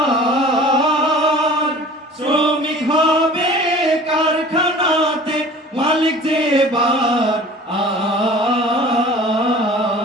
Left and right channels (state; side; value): normal; both; correlation 0.44